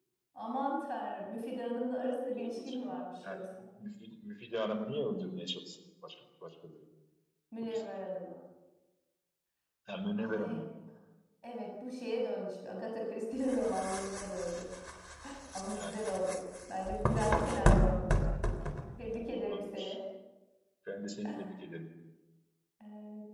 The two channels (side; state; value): both; identical; correlation 1.00